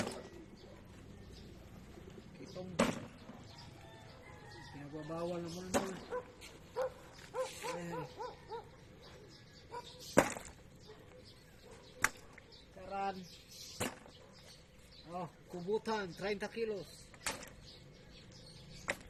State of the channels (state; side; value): identical; both; correlation 1.00